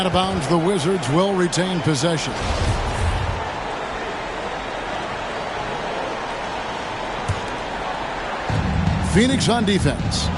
of bounds. The Wizards will retain possession. Phoenix on defense.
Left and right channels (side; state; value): both; identical; correlation 1.00